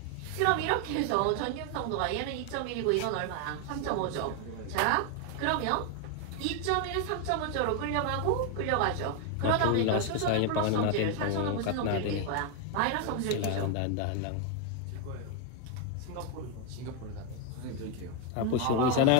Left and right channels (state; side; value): different; both; correlation 0.01